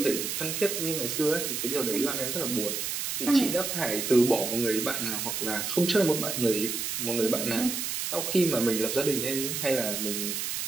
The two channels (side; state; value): right; noise; hiss, 2 dB below the sound